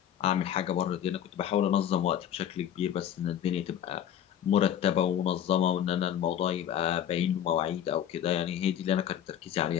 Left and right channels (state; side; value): quieter; right; 10.1 dB